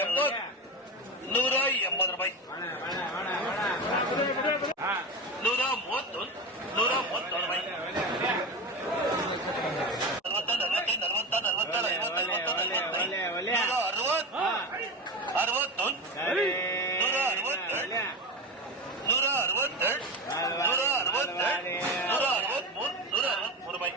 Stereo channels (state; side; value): normal; both; correlation 0.22